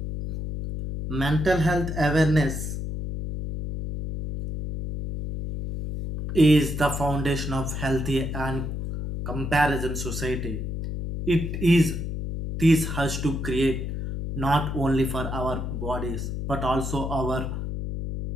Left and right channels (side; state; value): left; noise; hum, 4 dB below the sound